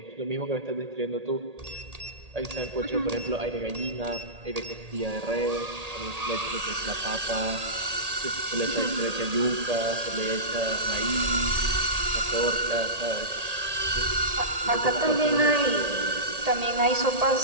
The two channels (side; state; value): left; late; 1.8 ms